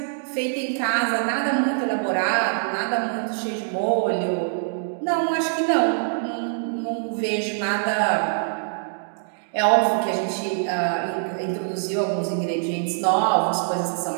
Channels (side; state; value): left; silent; digital silence